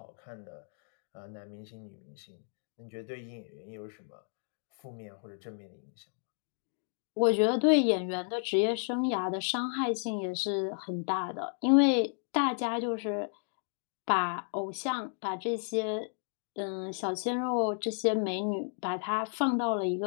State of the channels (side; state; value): right; silent; 56 dB below the other